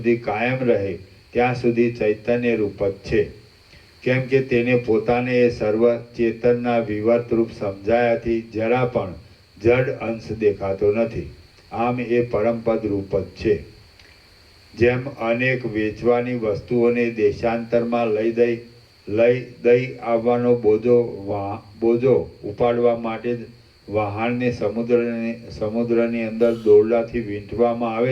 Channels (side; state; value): both; identical; correlation 1.00